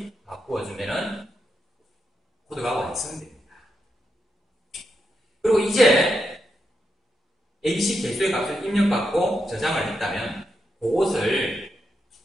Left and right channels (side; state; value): both; normal; correlation 0.84